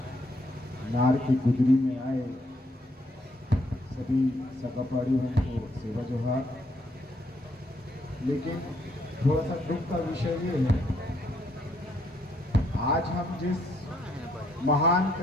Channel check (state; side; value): normal; both; correlation 0.72